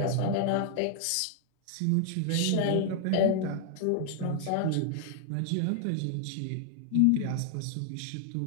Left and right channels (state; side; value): different; both; correlation 0.00